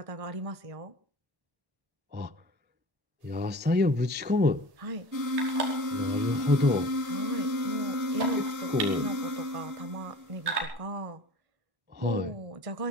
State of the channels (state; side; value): late; left; 1.1 ms